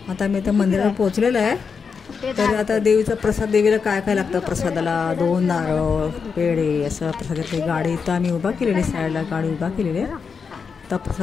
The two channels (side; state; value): right; quieter; 5.7 dB